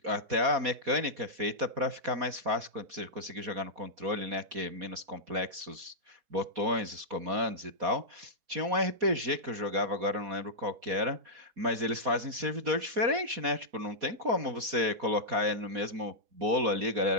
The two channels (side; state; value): left; late; 4.2 ms